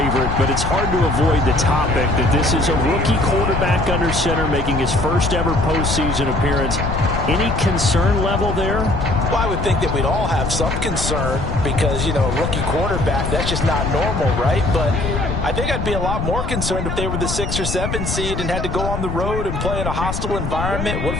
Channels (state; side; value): noise; left; rumble, 4 dB below the sound